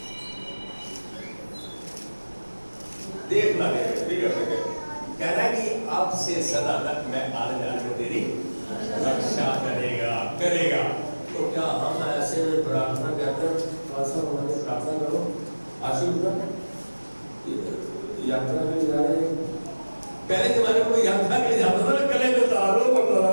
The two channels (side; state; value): both; inverted; correlation -1.00